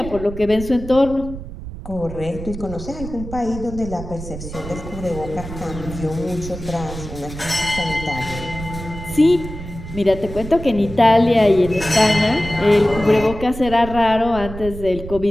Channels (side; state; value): right; noise; rumble, 11 dB below the sound